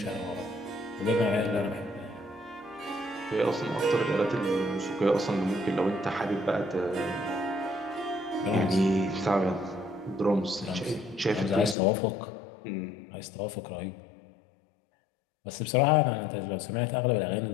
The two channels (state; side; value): drops out; right; at 11.8 s